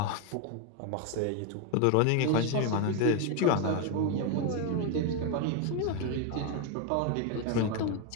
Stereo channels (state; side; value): different; both; correlation 0.02